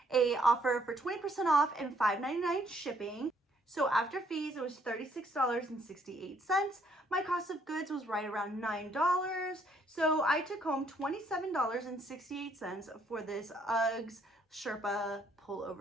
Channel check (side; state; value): both; normal; correlation 0.68